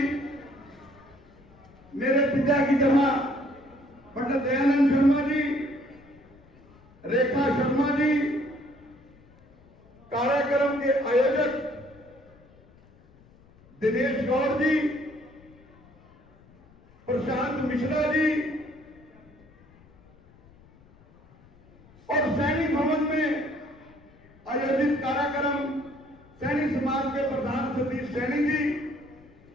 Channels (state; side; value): noise; left; rumble, 27 dB below the sound